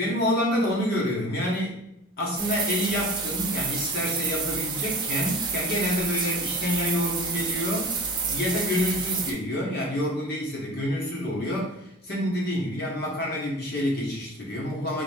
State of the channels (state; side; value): normal; both; correlation 0.39